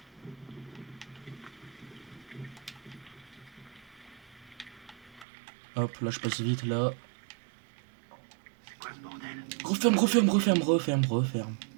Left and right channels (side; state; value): left; drops out; at 5.2 s